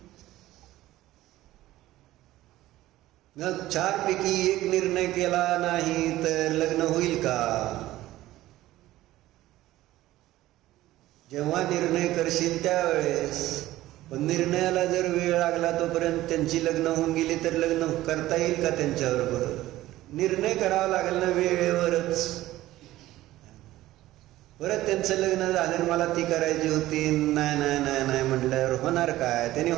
मग 4 पैकी 1 निर्णय केला नाही तर लग्न होईल का? जेव्हा निर्णय करशील त्यावेळेस. पण निर्णयाला जर वेळ लागला तोपर्यंत त्यांची लग्न होऊन गेली तर लग्न करता येईल का त्यांच्याबरोबर? निर्णय करावा लागेल ना वेळेवरच. परत त्यांचं लग्न झालं मला ती करायची होती, नाही नाही नाही नाही म्हटल्यावर होणार काय? त्यांनी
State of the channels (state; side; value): quieter; left; 15.8 dB